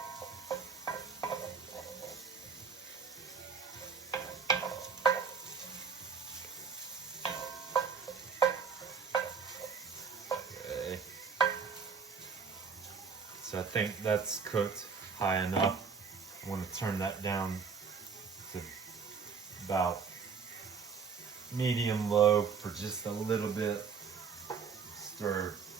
Okay. So I think that's cooked high enough. I want to turn that down to about medium low for just a little bit. Stir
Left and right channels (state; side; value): quieter; left; 5.8 dB